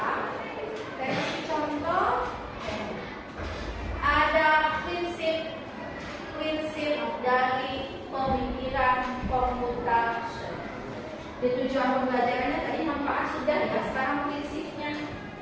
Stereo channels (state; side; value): identical; both; correlation 1.00